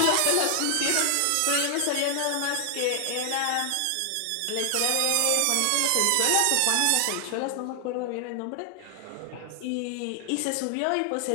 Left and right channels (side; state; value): both; different; correlation 0.00